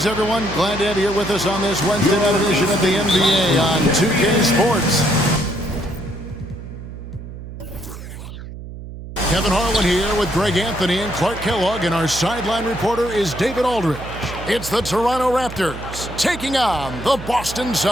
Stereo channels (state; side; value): noise; right; hum, 12 dB below the sound